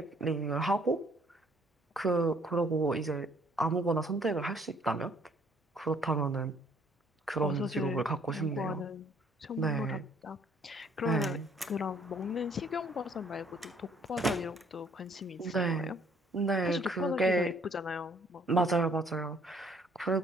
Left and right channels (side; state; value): both; normal; correlation 0.62